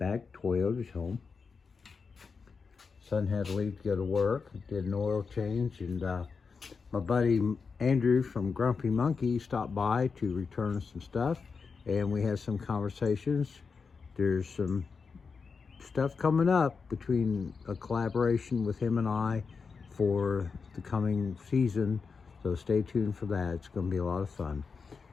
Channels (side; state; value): right; quieter; 5.2 dB